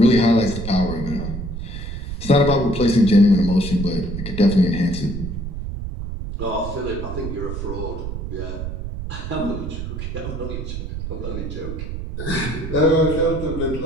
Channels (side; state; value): right; noise; rumble, 6 dB below the sound